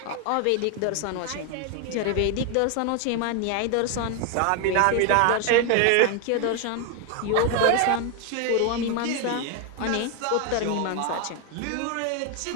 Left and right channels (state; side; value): different; both; correlation 0.01